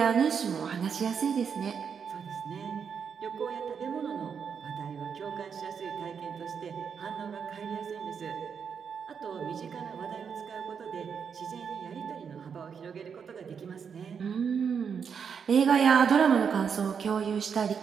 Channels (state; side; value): quieter; left; 6.7 dB